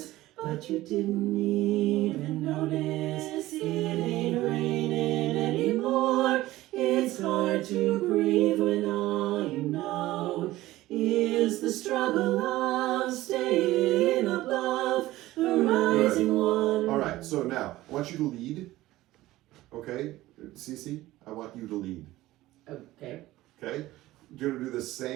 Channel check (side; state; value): left; quieter; 16.7 dB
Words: but you didn't even notice it ain't raining anymore. It's hard to breathe when all you know is the struggle of staying above the rising water. All right. So now I want you to lead. Okay, Cece, I want you to lead. Okay. Okay, you're gonna do the